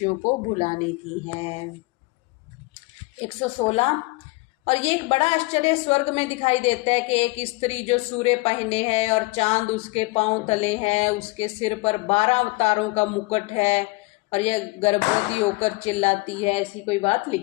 को भुलाने की है। 116 और ये एक बड़ा आश्चर्य स्वर्ग में दिखाई देता है कि एक स्त्री जो सूर्य पहने है और चांद उसके पांव तले है, उसके सिर पर 12 तारों का मुकुट है और यह गर्भवती होकर चिल्लाती है, ऐसी कोई बात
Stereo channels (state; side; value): quieter; right; 24.3 dB